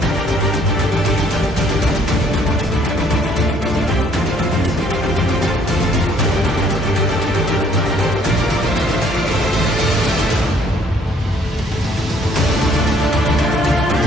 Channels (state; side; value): normal; both; correlation 0.62